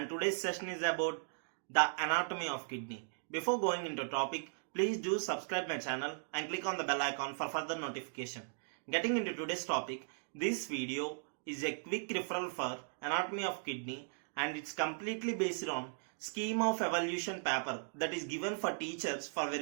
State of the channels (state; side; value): silent; left; digital silence